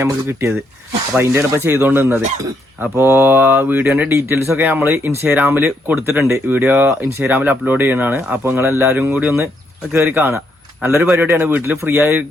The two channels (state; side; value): normal; both; correlation 0.75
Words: നമുക്ക് കിട്ടിയത്. അപ്പൊ അതിന്റെയാണ് ഇപ്പൊ ചെയ്തോണ്ട് നിന്നത്. അപ്പോ വീഡിയോന്റെ ഡീറ്റെയിൽസ് ഒക്കെ നമ്മൾ ഇൻസ്റ്റാഗ്രാമിൽ കൊടുത്തിട്ടുണ്ട്. വീഡിയോ ഇൻസ്റ്റാഗ്രാമിൽ അപ്ലോഡ് ചെയ്യണതാണ്. അപ്പൊ നിങ്ങൾ എല്ലാവരും കൂടി ഒന്ന് കയറി കാണാം. നല്ലൊരു പരിപാടിയാണ്. വീട്ടിൽ ഫ്രീ